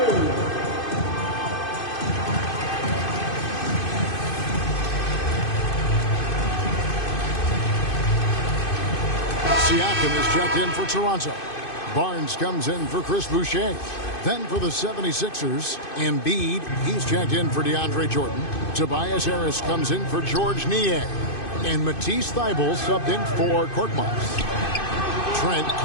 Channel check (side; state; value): right; late; 2.5 ms